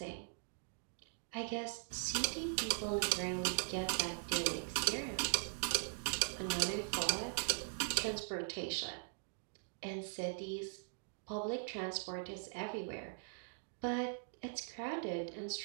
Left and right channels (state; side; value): silent; left; digital silence